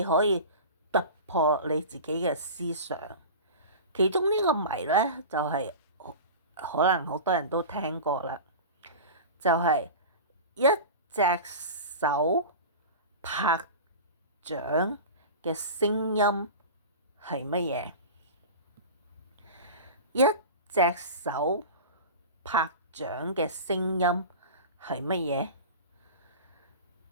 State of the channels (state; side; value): inverted; both; correlation -0.31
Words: 可以突破你自己嘅思想。其中呢個謎咧，就係可能好多人都聽過啦，就係一隻手拍掌嘅聲音係乜嘢？一隻手拍掌嘅聲音係乜